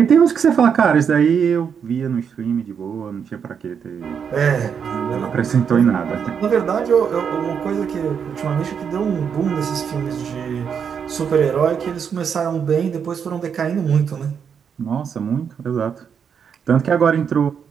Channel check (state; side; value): quieter; left; 7.1 dB